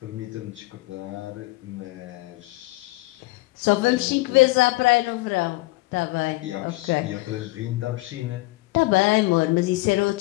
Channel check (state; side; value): quieter; right; 21.4 dB